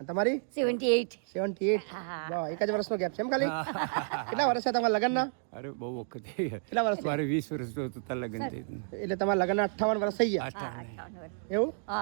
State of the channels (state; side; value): silent; left; digital silence